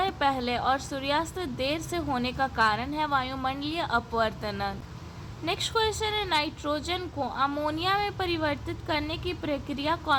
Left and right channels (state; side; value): identical; both; correlation 1.00